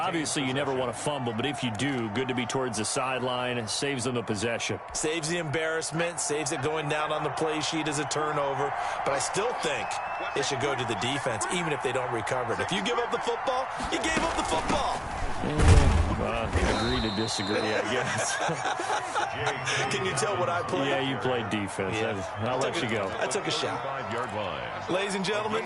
you never want to fumble, but if you do, good to be towards the sideline. It saves them the possession. Saves the embarrassment. Saves it going down on the play sheet as a turnover. But I still think it should go to the defense, even if they don't recover it. If you give up the football, you gave up the football. Agree to disagree, I guess. Can you tell what I played? Yeah, you played defense. Yeah. I'll let you go. I took a shot. 5-yard line. Ladies and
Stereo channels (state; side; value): identical; both; correlation 1.00